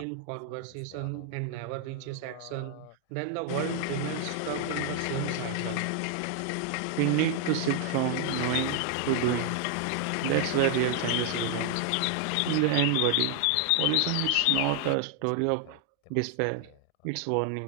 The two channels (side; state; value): both; different; correlation 0.00